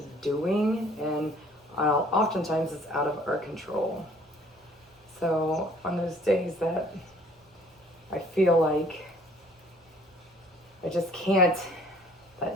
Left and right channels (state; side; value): normal; both; correlation 0.56